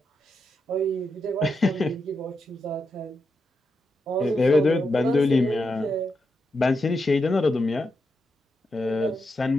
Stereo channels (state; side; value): normal; both; correlation 0.85